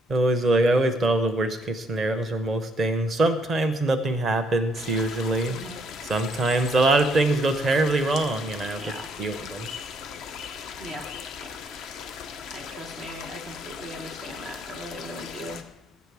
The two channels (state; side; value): normal; both; correlation 0.70